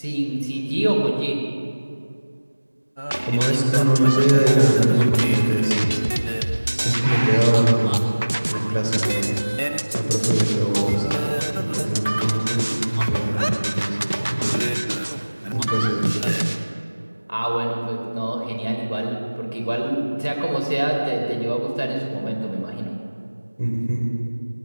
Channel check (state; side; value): inverted; both; correlation -1.00